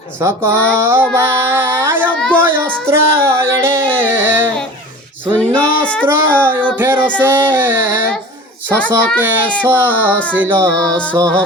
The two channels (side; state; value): both; normal; correlation 0.38